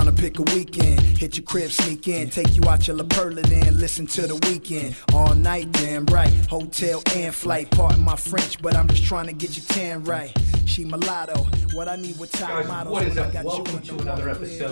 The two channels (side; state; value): both; inverted; correlation -1.00